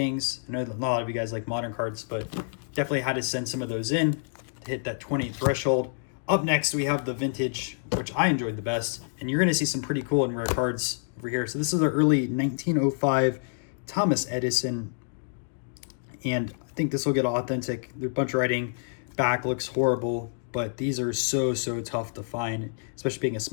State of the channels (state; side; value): silent; right; digital silence